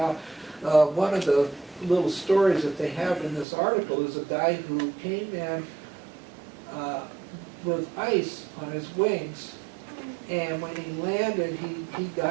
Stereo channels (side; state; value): left; drops out; at 3.5 s